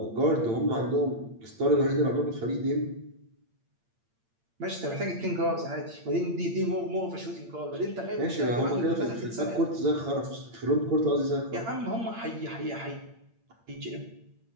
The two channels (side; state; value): left; late; 8.7 ms